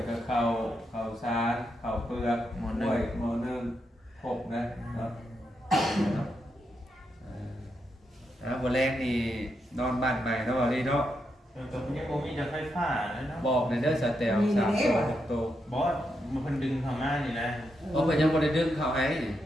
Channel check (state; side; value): normal; both; correlation 0.83